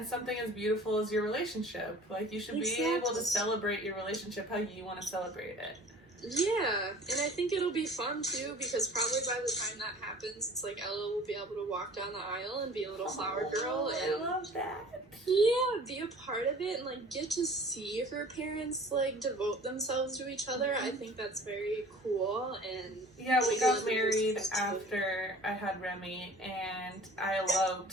something as beautiful as your relationship. Like, you should be able to celebrate your relationship how you want to celebrate it. Yeah, and I think it'll be fun, too, because probably by the time that happens, it's like Ella will be able to walk down the aisle and be a little flower girl. And I love that. Yeah, be a part of it and, like, get to see her parents, like, devote themselves to each other. I think that's very cool. And yeah, we got married after I had Remy, and I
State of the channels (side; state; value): both; normal; correlation 0.46